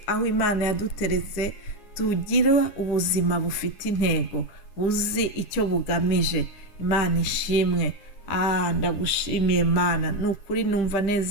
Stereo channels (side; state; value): right; late; 9.5 ms